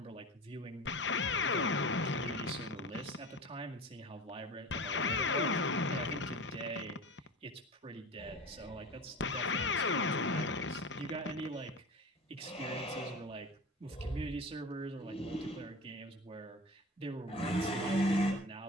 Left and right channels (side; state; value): both; normal; correlation 0.32